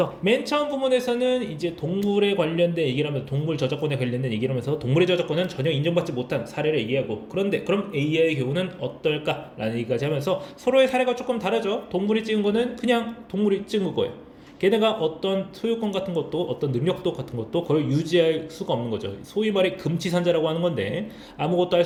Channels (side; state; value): both; identical; correlation 1.00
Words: 맨 처음 부분에서는 이제 동물에 관련된 얘기를 하면서 동물 저작권에 관련된 얘기를 하면서 동물의 저작권은 전혀 인정받지 못한 사례를 얘기하고 그런데 그럼 AI의 경우는 어떨까? 라는 얘기까지 하면서 서로의 사례가 조금 다르죠. 동물이 찍은 거는 그냥 동물이 찍은 거예요. 걔네가 어떤 소유권 같은 것도 어떤 능력도 같은 것도 그걸 유지할 수가 없는 거죠. 소위 말해 금치산자라고 하는 건데 아무것도 할